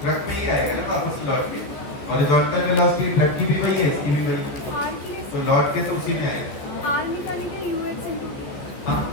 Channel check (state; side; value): late; right; 14 ms